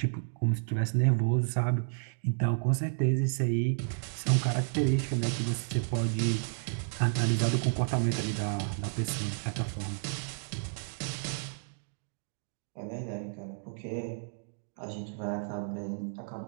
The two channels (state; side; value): silent; left; digital silence